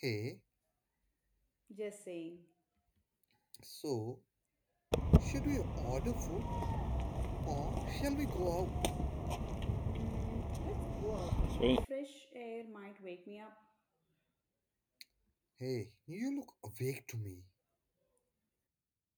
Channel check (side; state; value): both; identical; correlation 1.00